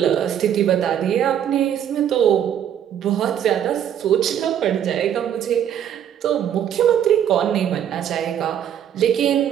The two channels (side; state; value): left; quieter; 9.7 dB